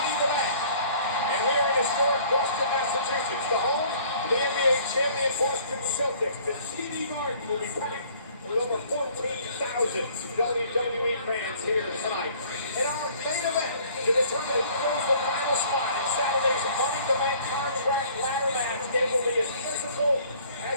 in the Bank. And we are in historic Boston, Massachusetts, the home of the NBA champion Boston Celtics. The TD Garden will be packed with over 14,000 WWE fans here tonight. In our main event, to determine who goes the final spot in Saturday's Money in the Bank contract ladder match, it will be as physical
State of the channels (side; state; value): both; inverted; correlation -0.55